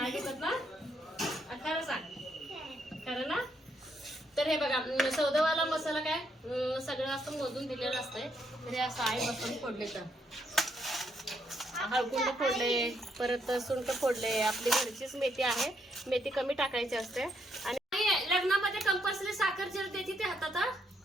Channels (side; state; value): both; normal; correlation 0.75